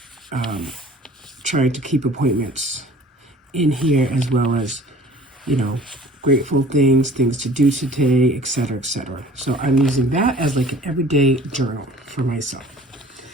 trying to keep appointments in here, as well as, grateful things to do today, etc., etc. So I'm using that as like an everyday journal for myself.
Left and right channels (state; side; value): normal; both; correlation 0.49